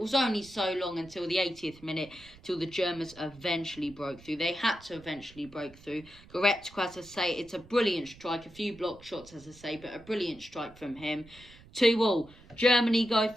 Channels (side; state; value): right; noise; rumble, 22 dB below the sound